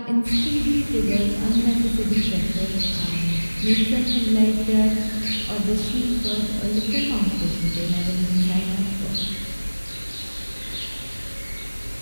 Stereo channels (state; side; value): inverted; both; correlation -1.00